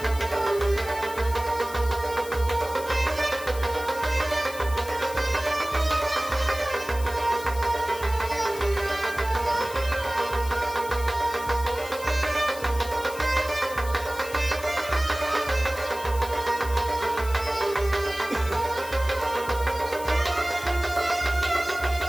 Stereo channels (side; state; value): left; noise; hiss, 14 dB below the sound